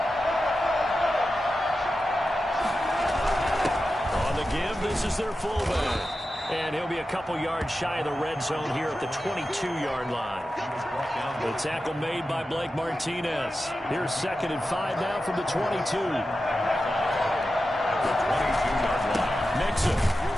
On the give, this is their fullback. And he'll be a couple yards shy of the red zone here at the 22-yard line. The tackle made by Blake Martinez. Here's 2nd and 5 now from the 22. Mixon.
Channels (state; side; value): normal; both; correlation 0.92